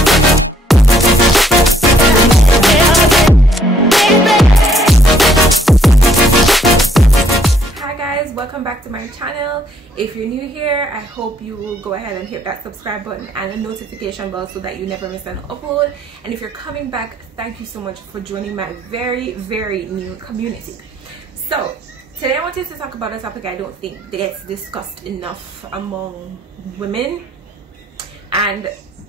Welcome back to my channel. If you're new here, I hope you will go ahead and hit that subscribe button and the notification bell so that you never miss an upload. And if you're coming back, thank you so much for joining my very new community. So today I wanted to talk about a topic I don't think gets discussed enough among women, and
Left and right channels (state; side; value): normal; both; correlation 0.67